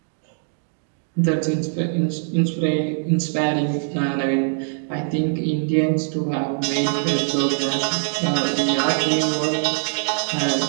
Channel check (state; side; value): silent; left; 63 dB below the other